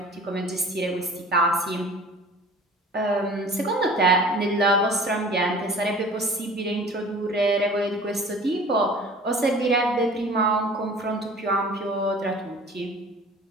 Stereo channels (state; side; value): normal; both; correlation 0.45